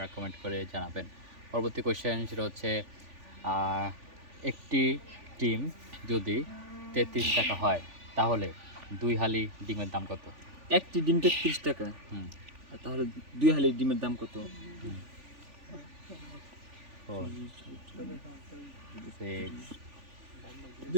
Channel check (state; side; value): late; left; 3.4 ms